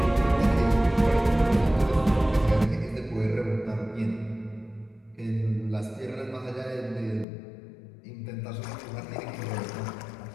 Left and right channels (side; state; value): right; drops out; at 7.2 s